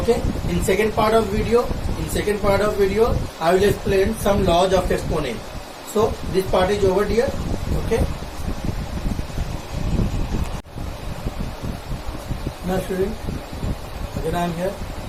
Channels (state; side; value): identical; both; correlation 1.00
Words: In second part of video, I will explain some laws of exponent. So this part is over here. Okay. Now student, again I am here,